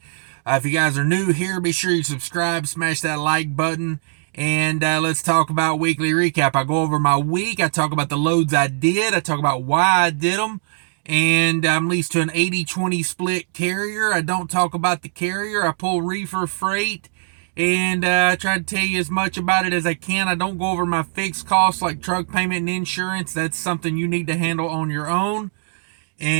If you guys are new here, be sure you subscribe, smash that like button, and let's talk about weekly recap. I go over my week. I talk about the loads I did. I talk about why I did them. And I'm leased to an 80-20 split carrier. I don't talk about the carrier. I pull Reefer freight and try to tell you as much about it as I can. I don't go over my fixed costs like truck payment and insurance. That's something you need to handle on your own.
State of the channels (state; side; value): silent; left; digital silence